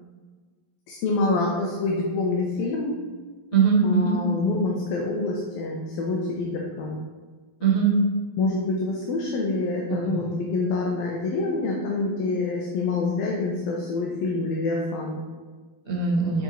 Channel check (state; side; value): late; right; 12 ms